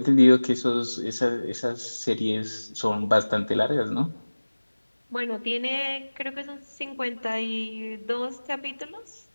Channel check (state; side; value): inverted; both; correlation -1.00